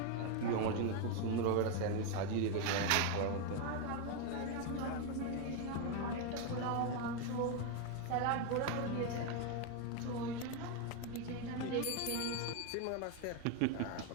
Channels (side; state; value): both; different; correlation 0.02